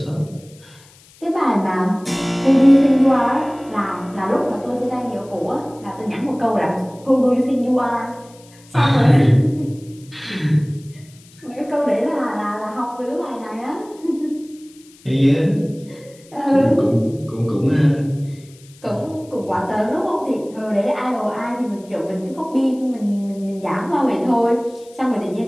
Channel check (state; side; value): noise; left; hiss, 26 dB below the sound